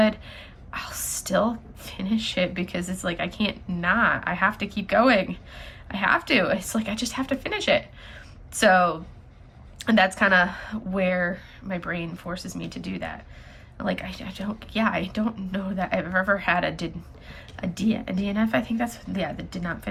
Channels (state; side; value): identical; both; correlation 1.00